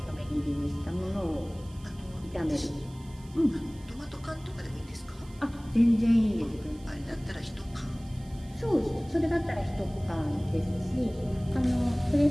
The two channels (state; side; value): noise; right; hiss, 25 dB below the sound